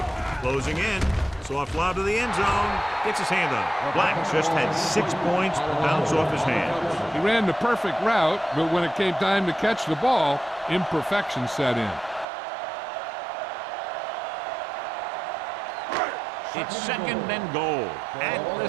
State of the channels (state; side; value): drops out; left; at 12.2 s